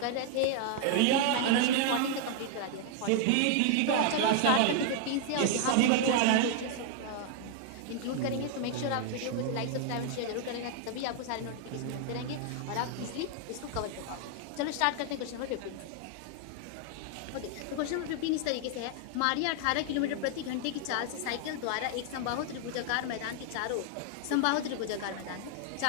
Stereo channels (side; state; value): both; different; correlation 0.00